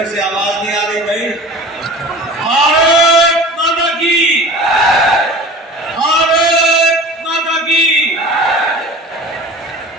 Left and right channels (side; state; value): both; normal; correlation 0.39